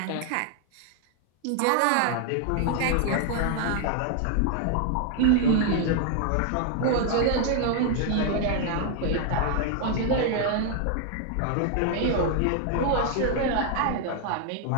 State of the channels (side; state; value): both; different; correlation 0.00